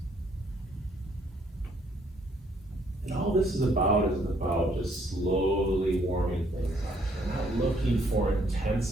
And all this is about just slowly warming things up. We're not looking for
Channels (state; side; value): normal; both; correlation 0.67